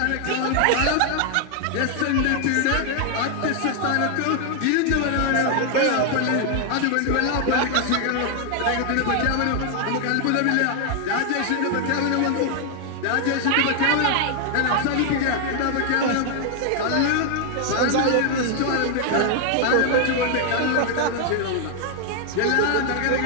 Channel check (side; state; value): both; different; correlation 0.00